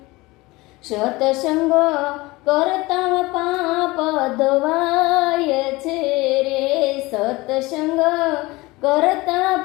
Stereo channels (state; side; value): quieter; right; 21.7 dB